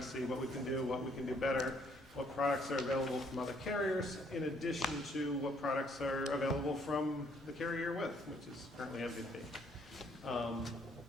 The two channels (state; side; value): normal; both; correlation 0.66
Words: see what we can do better, what products are available from other carriers, in addition to what products are available from the carrier you're with, which is currently MVP.